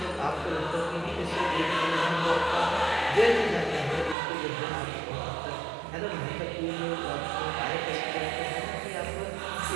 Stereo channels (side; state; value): left; drops out; at 4.2 s